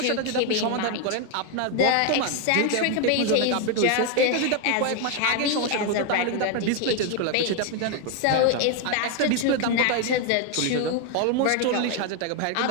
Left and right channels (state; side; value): different; both; correlation 0.01